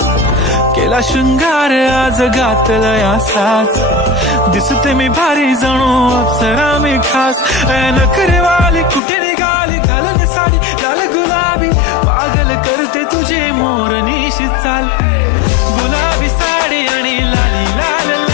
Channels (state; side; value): drops out; right; at 9.0 s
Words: केला शृंगार आज घातलाय असाच, दिसते मी भारी जणू अप्सरा मी खास. नखरेवाली कुठे निघाली घालून साडी लाल गुलाबी, पागल करते तुझे मोरनीशी चाल. गुलाबी साडी आणि लाली लाल